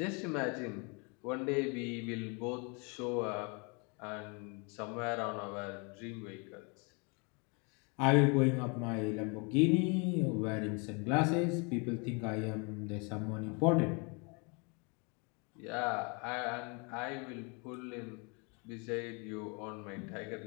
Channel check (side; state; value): right; quieter; 32.9 dB